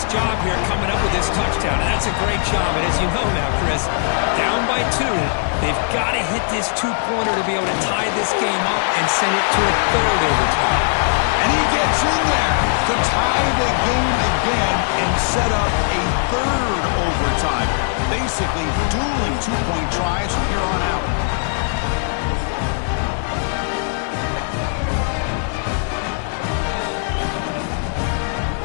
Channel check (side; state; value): right; silent; 66 dB below the other